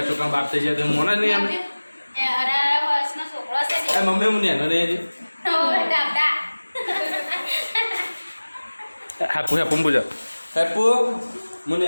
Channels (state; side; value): inverted; both; correlation -1.00